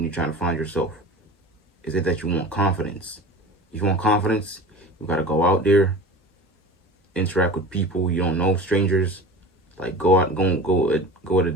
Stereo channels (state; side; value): normal; both; correlation 0.36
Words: you're trying to find yourself? Is it that you want confidence? If you want confidence, you gotta go out there, interact with people you don't know, strangers. Like go out, go at a